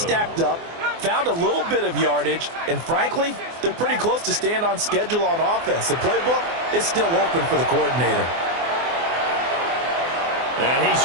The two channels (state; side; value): late; left; 24 ms